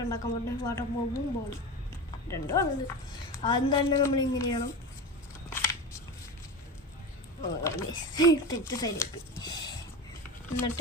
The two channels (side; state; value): both; normal; correlation 0.25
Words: ഉണ്ടാക്കാൻ പറ്റുന്നത്? വാട്ടർ ബോംബും ബോളും രണ്ടും ആണത്. ആദ്യം തന്നെ നമ്മൾ ഇങ്ങനെ ചെയ്യണം. തെറ്റ് സൈഡിലേക്ക്